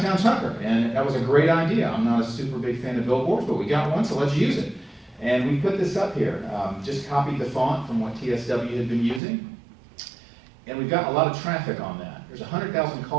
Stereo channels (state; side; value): drops out; left; at 9.2 s